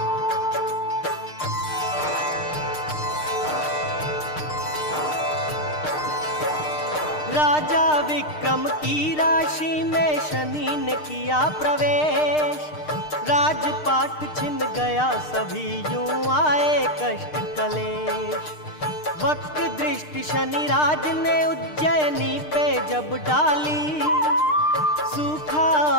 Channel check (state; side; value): late; right; 6.6 ms